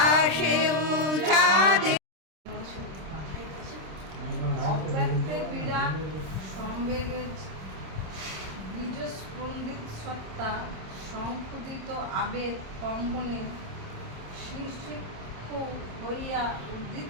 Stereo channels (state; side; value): late; left; 26 ms